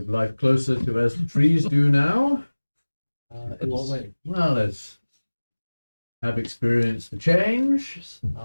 life closer to as the trees do now. In what way? Well, as have experienced the change.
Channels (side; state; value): both; inverted; correlation -1.00